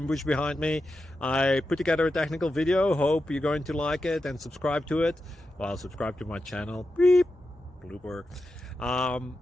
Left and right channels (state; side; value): normal; both; correlation 0.89